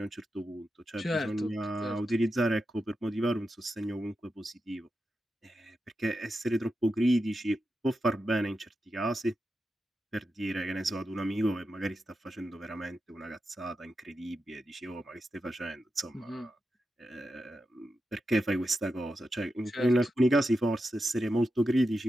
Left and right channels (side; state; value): both; normal; correlation 0.89